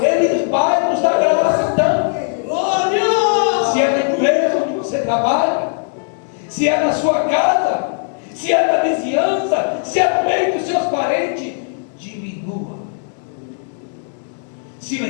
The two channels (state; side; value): silent; right; digital silence